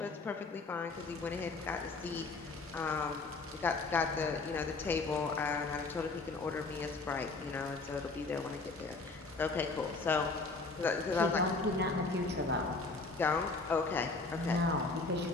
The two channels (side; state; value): right; quieter; 3.7 dB